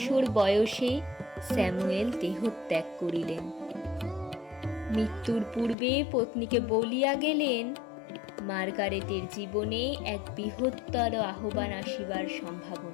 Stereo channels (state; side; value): drops out; right; at 5.8 s